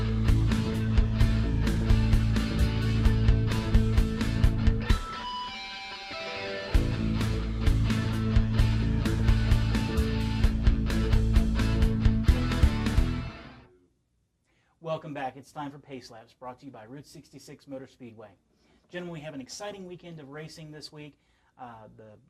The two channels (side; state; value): both; identical; correlation 1.00